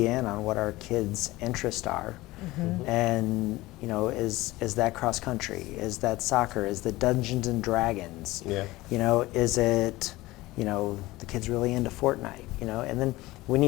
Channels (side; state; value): right; quieter; 19.1 dB